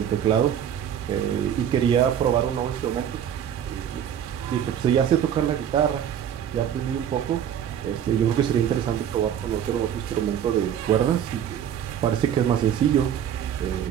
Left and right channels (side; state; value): left; quieter; 9.5 dB